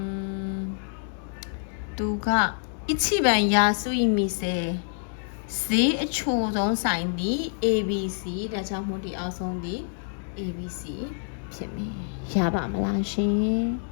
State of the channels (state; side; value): silent; right; 60 dB below the other